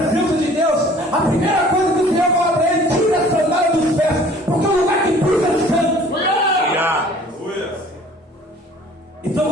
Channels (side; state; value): both; normal; correlation 0.51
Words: de Deus, a primeira coisa que o Senhor fala para ele, tira a sandália dos pés, porque o lugar que pisa é santo. Então